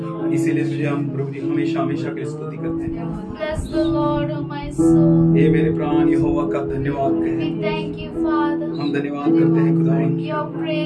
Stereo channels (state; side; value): identical; both; correlation 1.00